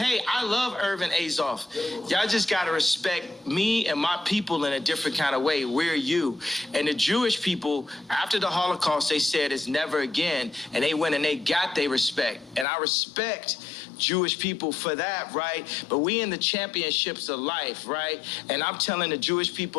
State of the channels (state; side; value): drops out; right; at 12.7 s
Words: I love Irvin Azoff. Y'all just gotta respect me and my people in a different kind of way. We're you. And the Jewish people, after the Holocaust, they said it's never again. And they went and they got their respect. And I respect Jewish people for that, right? But we in the championships of life, right? And I'm telling the Jewish